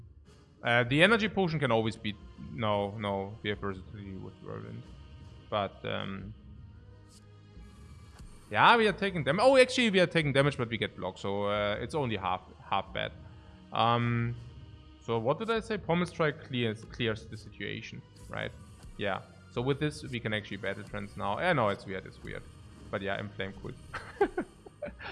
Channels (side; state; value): both; identical; correlation 1.00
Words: energy potion can always be... No, we have versatility with Whirlwind. But, yeah, we are taking damage. Oh, actually, we are taking damage, but we get blocked. So, it's only half bad. So, what did I say? Pommel Strike clears the situation, right? Yeah. So, with this, we can actually battle trance now. Yeah, no, it's weird. But yeah, Inflame cool.